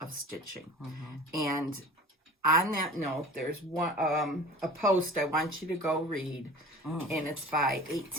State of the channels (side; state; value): both; normal; correlation 0.40